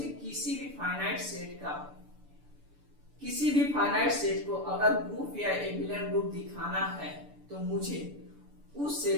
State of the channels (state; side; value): late; left; 6.9 ms